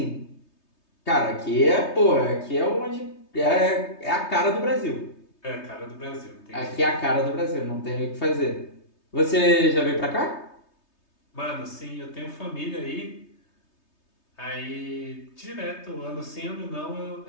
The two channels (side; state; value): right; late; 3.2 ms